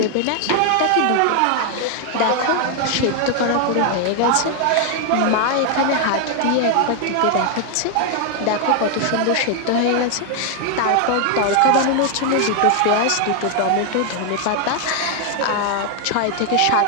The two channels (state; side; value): different; both; correlation 0.00